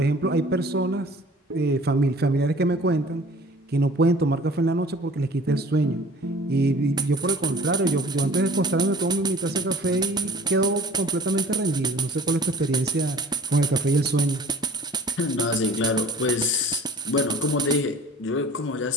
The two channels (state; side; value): normal; both; correlation 0.48